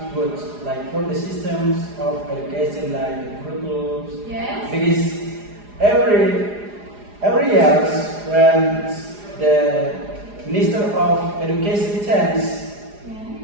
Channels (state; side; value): late; left; 4.9 ms